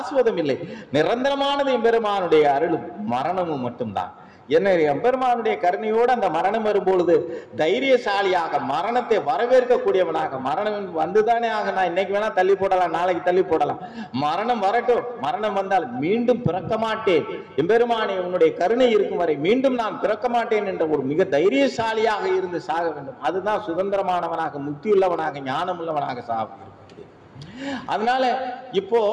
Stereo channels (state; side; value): identical; both; correlation 1.00